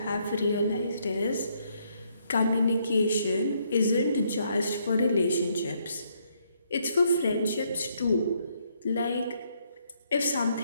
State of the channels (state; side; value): inverted; both; correlation -0.73